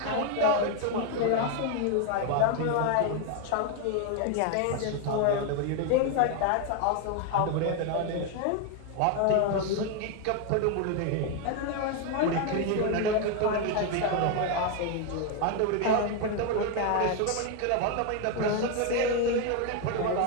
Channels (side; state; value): both; different; correlation 0.01